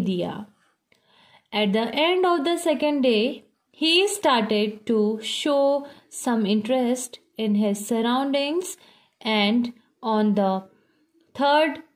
दिया। At the end of the second day, he started to show some interest in his surroundings, and on the third,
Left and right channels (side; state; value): both; identical; correlation 1.00